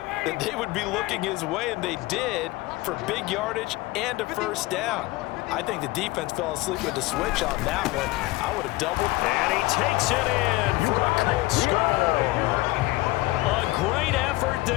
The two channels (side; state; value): right; quieter; 20.1 dB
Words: that they would be looking his way, and they did, for big yardage and a 1st down. I think the defense fell asleep with the switch on that one. I would have doubled. And he takes it in for a Colts score. A great effort